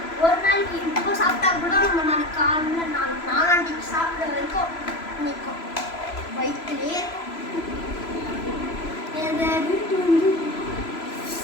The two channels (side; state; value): right; late; 3.0 ms